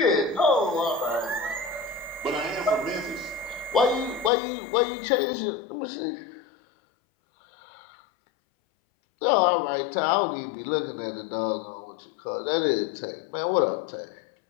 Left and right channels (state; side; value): drops out; right; at 4.3 s